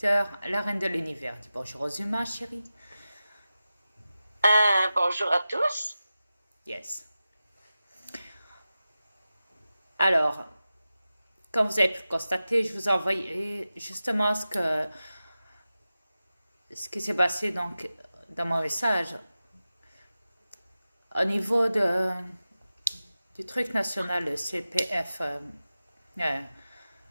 la reine de l'univers. Dis bonjour aux humains, chérie. Bonjour à tous. Yes. Alors, comme vous avez pu le constater, je vous ai envoyé justement ce qui s'est passé donc dans mon message au niveau du truc national, le CPF. Euh,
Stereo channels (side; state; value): both; inverted; correlation -0.94